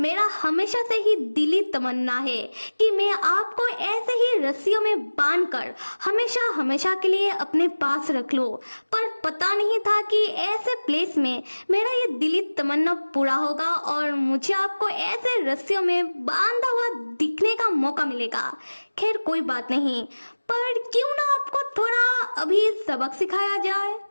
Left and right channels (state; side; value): inverted; both; correlation -1.00